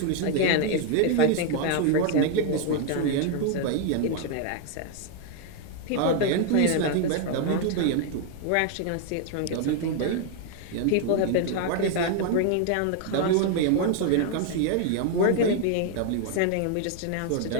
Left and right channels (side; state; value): both; different; correlation 0.00